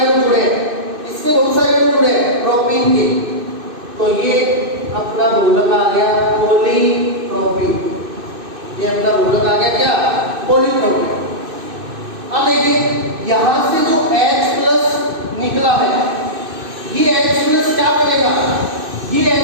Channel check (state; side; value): late; left; 2.6 ms